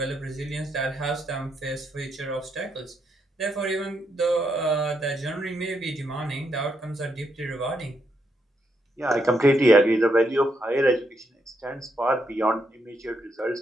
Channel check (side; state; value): both; normal; correlation 0.79